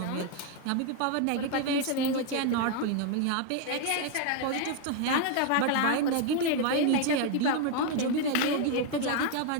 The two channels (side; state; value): both; different; correlation 0.01